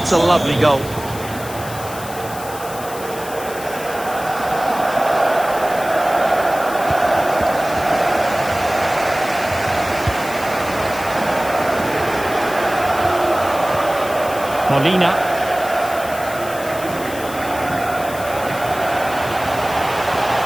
a lovely goal. Molina.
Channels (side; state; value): left; noise; hiss, 14 dB below the sound